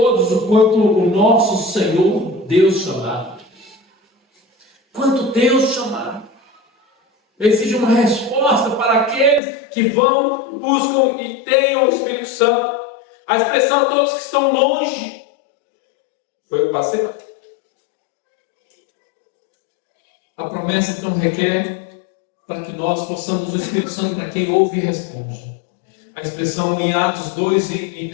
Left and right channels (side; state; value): right; drops out; at 9.4 s